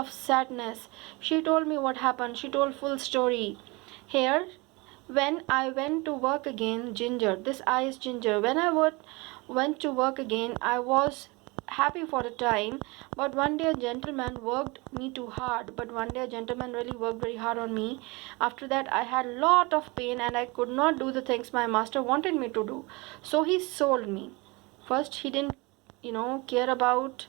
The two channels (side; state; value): left; quieter; 25.9 dB